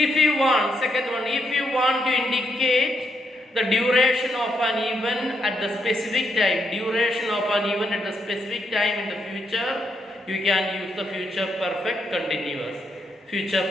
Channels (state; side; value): normal; both; correlation 0.78